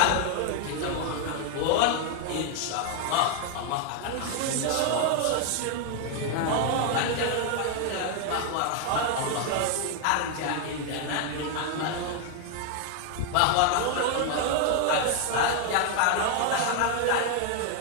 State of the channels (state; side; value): different; both; correlation 0.00